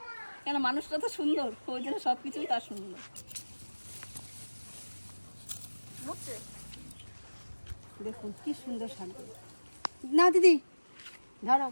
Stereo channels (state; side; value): inverted; both; correlation -1.00